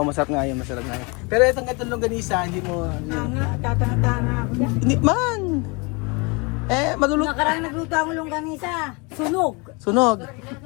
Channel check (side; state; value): right; quieter; 29.2 dB